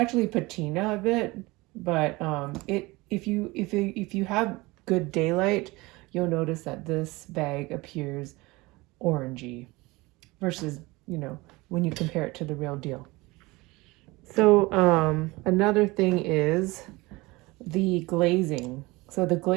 patina a bit, but if you have good daylight, you'll notice that this bag appears orangey versus, when you compare it to the real deal. So another thing is the glazing. So the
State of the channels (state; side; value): quieter; left; 22.4 dB